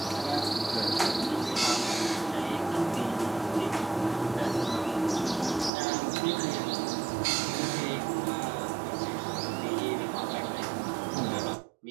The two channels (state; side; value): drops out; left; at 5.7 s